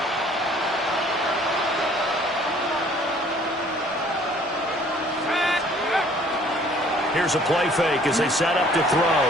Here's a play fake as they set up to throw.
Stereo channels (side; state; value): both; normal; correlation 0.56